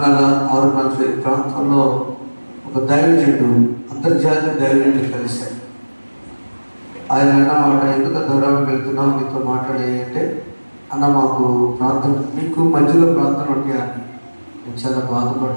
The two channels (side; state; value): both; inverted; correlation -1.00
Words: ప్రాంతంలో ఒక దైవజనుడు, అంతర్జాతీయ దైవజనుడు కలిశాడు. ఆయన అన్నమాట, ఎందుకు దూరం వెళ్తున్నావు, మీతో మాట్లాడే అన్న మాకు ప్రార్థన, మీకు మధ్యలో ప్రార్థన ఉంటాయా అని. నేను చాలా